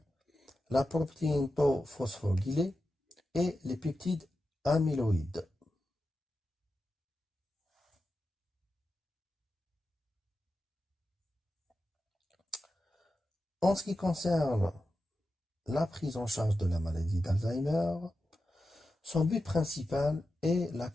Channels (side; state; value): both; normal; correlation 0.91